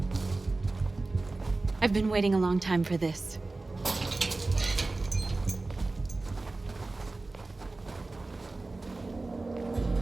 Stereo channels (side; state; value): left; quieter; 3.3 dB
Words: I've been waiting a long time for this.